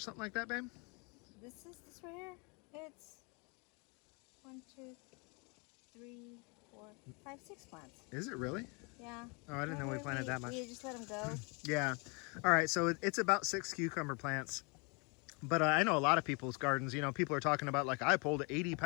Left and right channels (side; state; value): right; quieter; 31.6 dB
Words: like that, babe? This right here, it's 1, 2, 3, 4, 5, 6 plants. Is it really? Yeah. Oh, I didn't know we planted that much. We just let them go. Yeah. All right, so it's about 6 cucumber plants. But I know a lot of people's gardens, you know, people are talking about like, I pulled 80